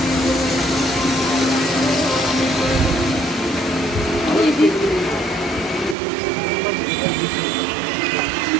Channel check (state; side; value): drops out; left; at 6.0 s